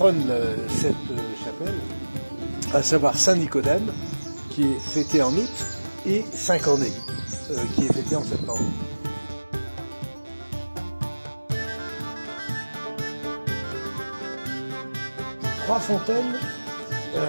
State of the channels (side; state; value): both; inverted; correlation -1.00